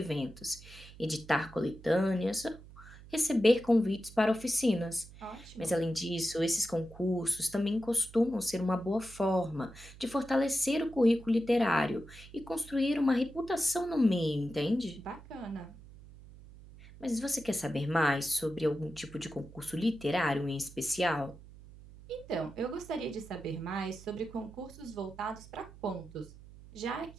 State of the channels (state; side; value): noise; right; hum, 19 dB below the sound